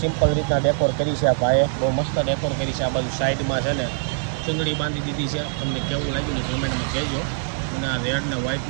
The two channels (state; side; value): silent; left; digital silence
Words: રીતના ડેકોર કરી છે આ ભાઈએ. બહુ મસ્ત ડેકોર કરી છે. આ બાજુ સાઈડમાં છે ને ચૂંદડી બાંધી દીધી છે. તમને કેવું લાગ્યું ને કમેન્ટમાં કહેજો. અને આ રેડ ને